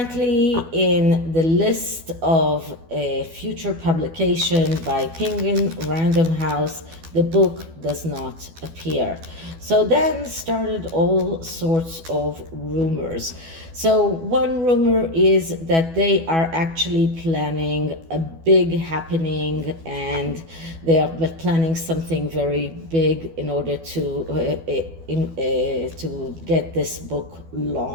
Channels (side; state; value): left; late; 12 ms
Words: in the list of a future publication by Penguin Random House, the book does not appear. So then started all sorts of rumors. So one rumor is that they are actually planning a big happening, and they are planning something very big in order to get this book